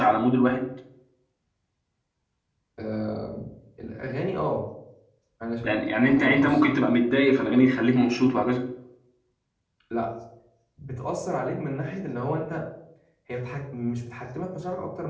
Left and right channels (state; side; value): identical; both; correlation 1.00